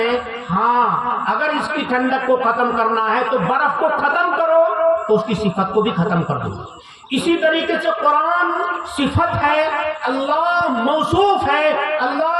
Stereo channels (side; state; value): both; identical; correlation 1.00